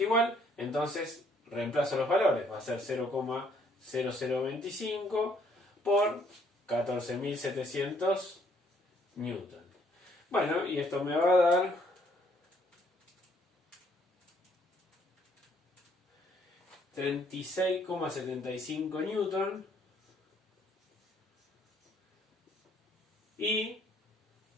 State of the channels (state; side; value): normal; both; correlation 0.66